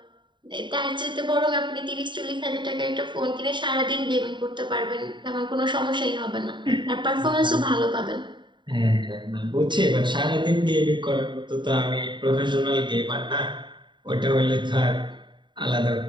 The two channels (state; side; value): late; left; 0.23 ms